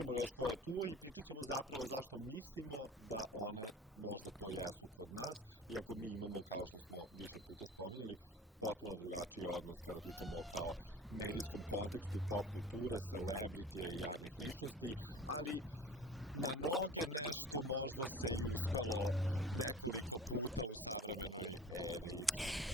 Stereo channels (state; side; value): normal; both; correlation 0.41